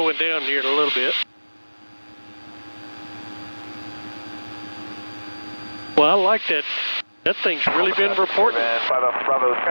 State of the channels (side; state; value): both; inverted; correlation -1.00